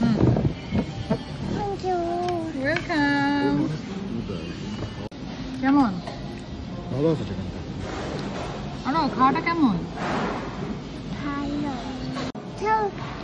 Thank you. Welcome. কেমন? ভালো আছে চিকেনটা। আনো খাওয়াটা কেমন? Hello. Tell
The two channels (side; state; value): both; identical; correlation 1.00